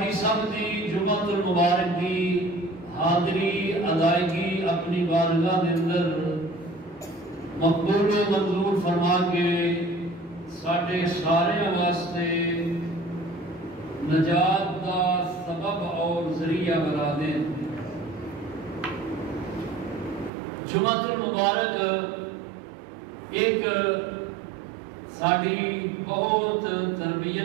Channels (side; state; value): left; drops out; at 20.3 s